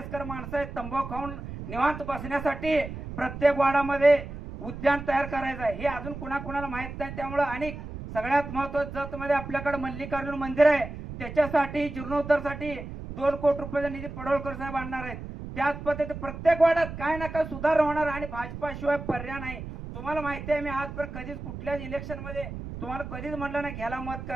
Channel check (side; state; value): right; noise; rumble, 9 dB below the sound